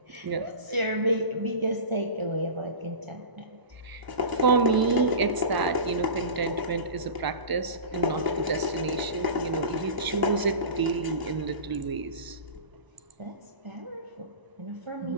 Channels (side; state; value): left; late; 1.0 ms